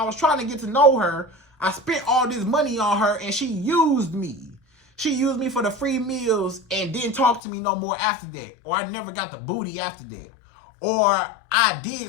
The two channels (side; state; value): right; drops out; at 7.4 s